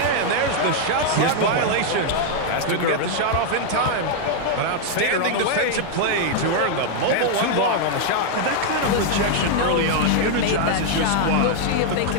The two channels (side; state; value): both; different; correlation 0.00